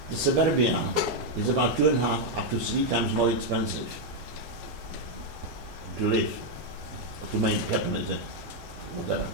the suburbia is about 2.5 up to 3 times more expensive to live, to make happen, whatever.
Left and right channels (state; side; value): normal; both; correlation 0.01